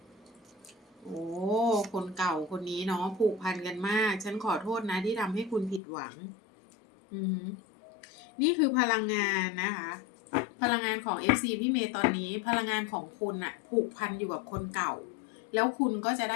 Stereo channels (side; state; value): right; drops out; at 5.8 s